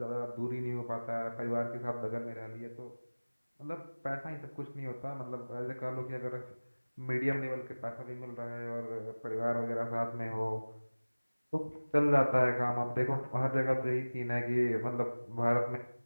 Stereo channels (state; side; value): inverted; both; correlation -1.00